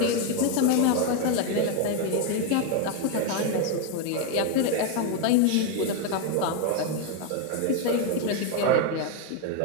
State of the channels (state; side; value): different; both; correlation 0.01